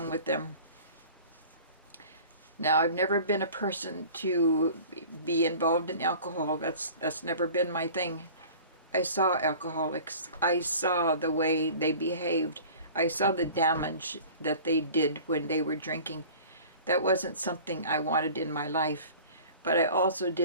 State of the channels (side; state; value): both; inverted; correlation -0.44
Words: with them. Now, I've never been a person to be involved in alcohol. That's never been my thing. I saw alcoholics. I saw the way they behaved. I saw the damage that they did when they were drinking. That wasn't something I wanted in my life. But I also